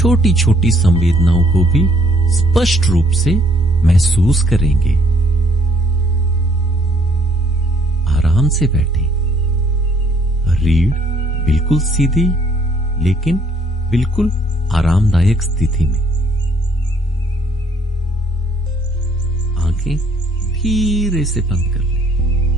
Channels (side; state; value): both; normal; correlation 0.64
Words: छोटी संवेदनाओं को भी स्पष्ट रूप से महसूस करेंगे। आराम से बैठें, रीढ़ बिल्कुल सीधी लेकिन बिल्कुल आरामदायक स्थिति में। आंखें धीरे से बंद कर लें